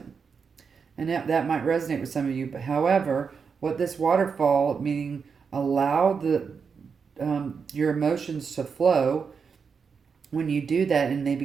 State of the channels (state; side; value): quieter; left; 5.8 dB